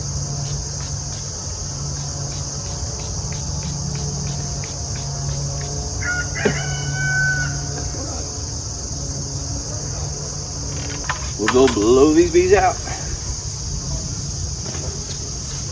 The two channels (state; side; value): identical; both; correlation 1.00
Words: We'll go blow these bees out.